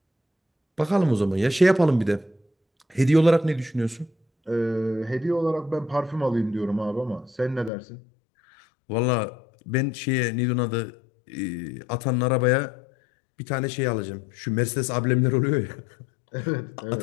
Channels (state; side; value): drops out; right; at 7.7 s